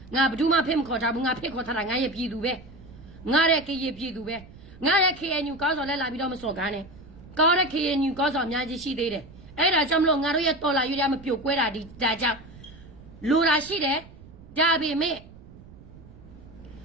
ငါဘယ်သူမှဖိမခေါ်ထားဘူးငါဖိခေါ်ထားတာငါရဲ့ပြည်သူပဲငါရဲ့ကရပြည်သူပဲငါရဲ့ KNU ကောင်းဆောင်လဲလာပြီးတော့မစော်ကားနဲ့ကောင်းတဲ့ KNU ကောင်းဆောင်အများကြီးရှိသေးတယ်အဲ့ဒါကြောင့်မလို့ငါတို့ရဲ့တော်လာရွေးရမပြိုကွဲတာဒီဒါကြောင့်လိုတာရှိတယ်ဒါပေမဲ့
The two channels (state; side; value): noise; right; rumble, 19 dB below the sound